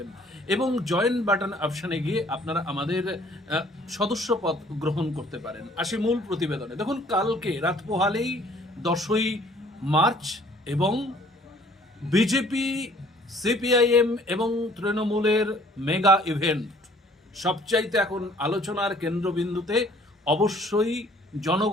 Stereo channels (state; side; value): normal; both; correlation 0.56